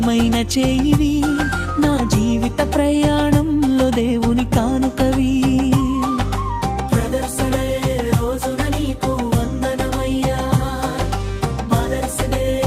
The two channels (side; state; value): both; identical; correlation 1.00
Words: చేయివి, నా జీవిత ప్రయాణంలో దేవుని కానుకవి. బ్రదర్సుడే రోజున నీకు వందనమయ్యా, మదర్సుడే